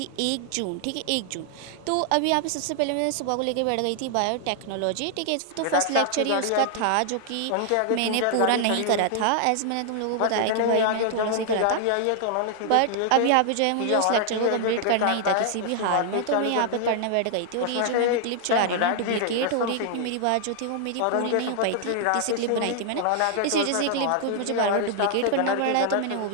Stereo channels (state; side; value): different; both; correlation 0.00